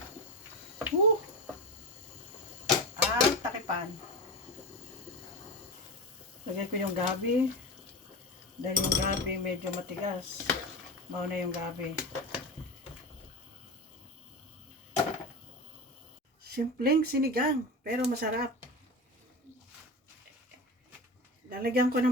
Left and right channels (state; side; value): normal; both; correlation 0.24